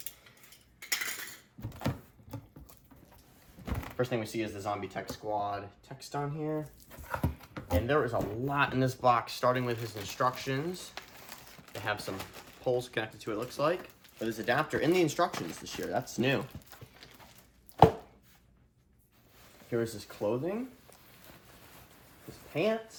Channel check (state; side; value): identical; both; correlation 1.00